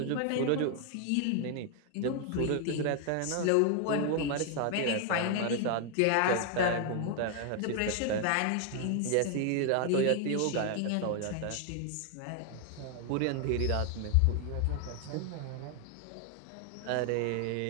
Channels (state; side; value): different; both; correlation 0.00